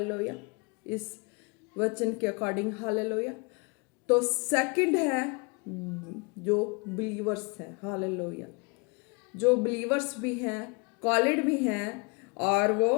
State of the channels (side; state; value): right; quieter; 31.5 dB